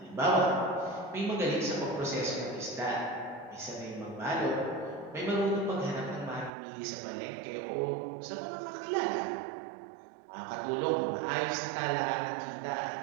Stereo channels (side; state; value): left; drops out; at 6.5 s